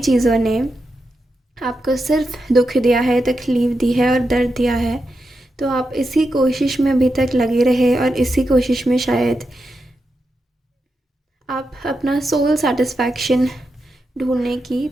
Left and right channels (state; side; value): normal; both; correlation 0.87